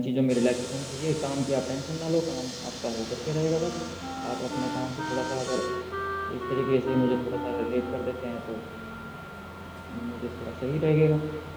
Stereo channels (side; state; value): both; identical; correlation 1.00